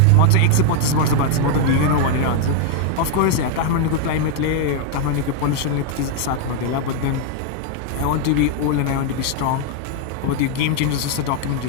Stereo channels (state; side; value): different; both; correlation 0.00